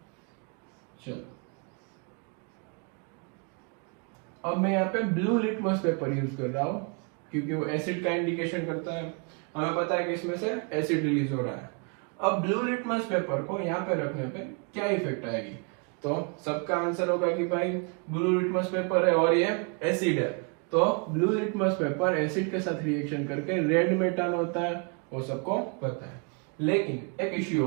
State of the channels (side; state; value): left; quieter; 35.3 dB